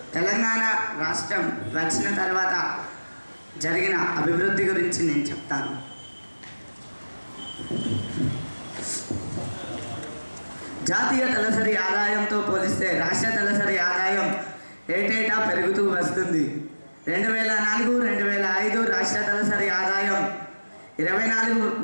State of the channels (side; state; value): both; inverted; correlation -1.00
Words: Telangana రాష్ట్రం వచ్చిన తర్వాత జరిగిన అభివృద్ధి గురించి నేను చెప్తాను. జాతీయ తలసరి ఆదాయంతో పోలిస్తే రాష్ట్ర తలసరి ఆదాయం ఏటేటా పెరుగుతూ వస్తుంది. 2004-2005 రాష్ట్ర తలసరి ఆదాయం